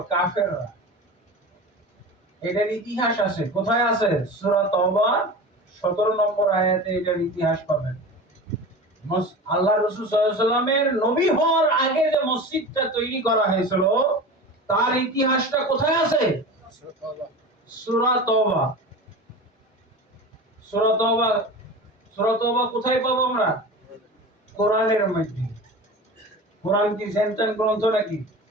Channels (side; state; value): both; normal; correlation 0.32